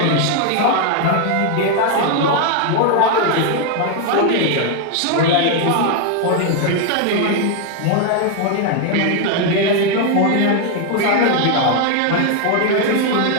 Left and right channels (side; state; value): both; different; correlation 0.01